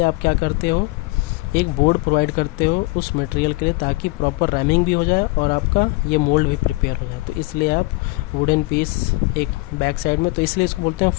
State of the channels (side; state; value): right; quieter; 23.8 dB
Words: आप क्या करते हो, एक बोर्ड प्रोवाइड करते हो उस मटेरियल के लिए, ताकि प्रॉपर रैमिंग भी हो जाए और आपका ये मोल्ड भी प्रिपेयर हो जाए। तो इसलिए आप वुडन पीस एक बैक साइड में, तो इसलिए इसको बोलते हैं